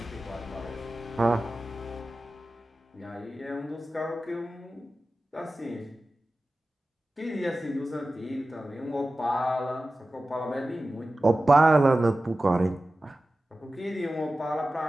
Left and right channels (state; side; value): normal; both; correlation 0.95